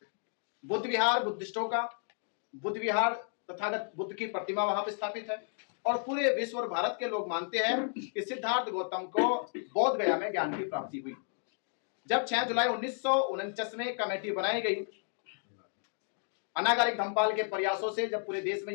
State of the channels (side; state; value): right; silent; 56 dB below the other